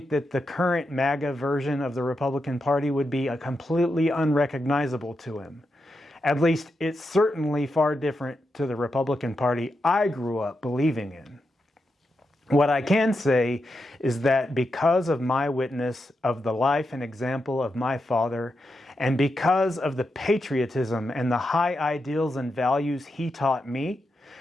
that the current MAGA version of the Republican Party would be completely unrecognizable to him. At least it's certainly far different to the Republican Party I grew up believing in. What I can say is that because of my witness of the life and example of my father, and because of the patriotism and the high ideals and values he taught me,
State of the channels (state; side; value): normal; both; correlation 0.86